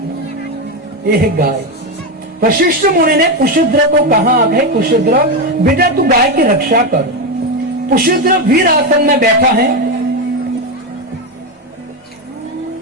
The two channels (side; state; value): both; normal; correlation 0.11